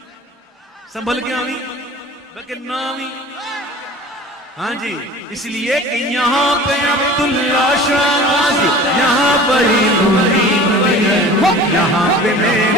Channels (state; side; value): normal; both; correlation 0.41